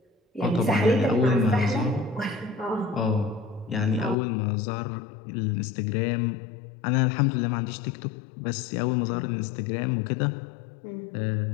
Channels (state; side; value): drops out; right; at 4.2 s